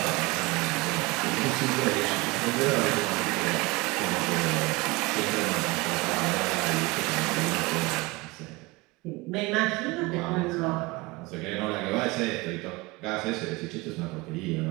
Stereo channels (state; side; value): quieter; left; 23.4 dB